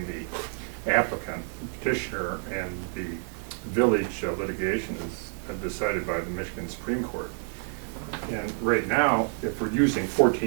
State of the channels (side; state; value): left; silent; 57 dB below the other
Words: the applicant, petitioner, and the village litigation is decided by the Michigan Supreme Court. And right now, if we're using